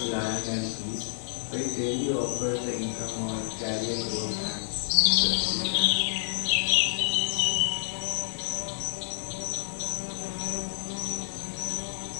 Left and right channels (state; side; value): silent; right; 59 dB below the other